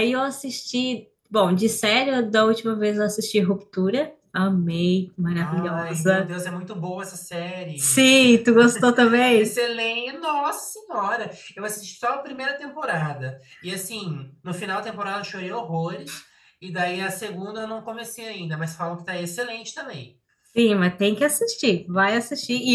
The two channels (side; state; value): both; identical; correlation 1.00